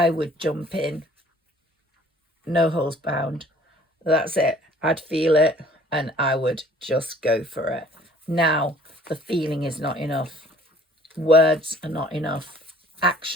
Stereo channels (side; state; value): both; normal; correlation 0.54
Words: would jump in, no holes bound. That's it. I'd feel it and I would just go for it. Now, the feeling is not enough. Words are not enough.